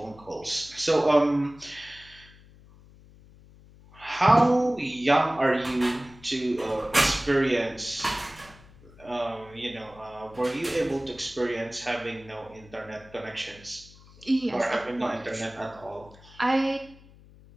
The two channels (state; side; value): noise; left; hum, 23 dB below the sound